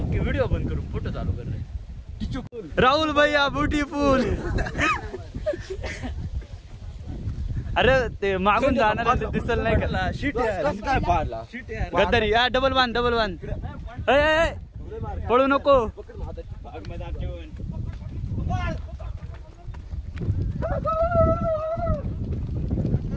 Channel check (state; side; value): identical; both; correlation 1.00